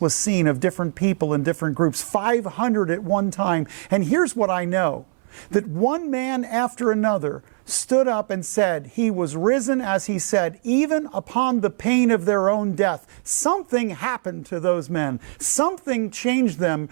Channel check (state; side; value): silent; left; 64 dB below the other